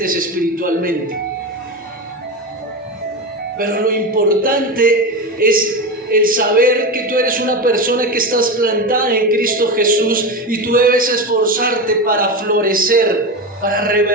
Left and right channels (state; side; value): normal; both; correlation 0.20